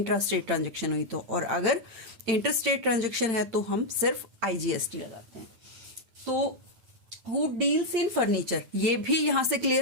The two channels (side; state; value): left; late; 9.3 ms